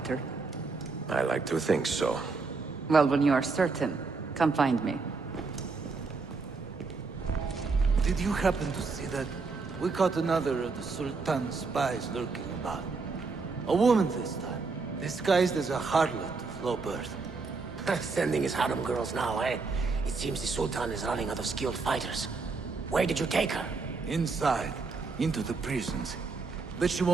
I like to think so. Well, when you are certain, come find me. Did you happen to see that? We caught another of the Sultan's spies lurking about. A woman this time, disguised as a harlot of low birth. Sending his harem girls now, eh? It seems the Sultan is running out of skilled fighters. Where did you take her? Inside, into the prisons. but she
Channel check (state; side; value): quieter; left; 4.3 dB